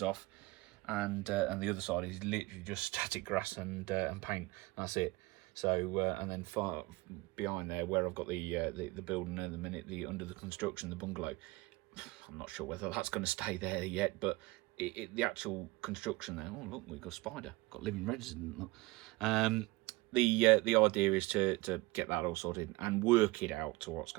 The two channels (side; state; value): left; quieter; 21.8 dB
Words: off, and the other side is literally just static grass and paint. That's it. So and then far behind there, where I've got the building at the minute, under the construction, the bungalow. I'm not sure whether that's going to stay there yet, but the actual construction there. Oh look, we've got a spider. Got living resident. Look. The idea is to get that all sorted and work it out to what's